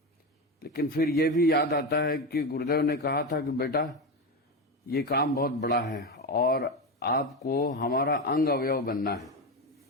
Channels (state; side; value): normal; both; correlation 0.17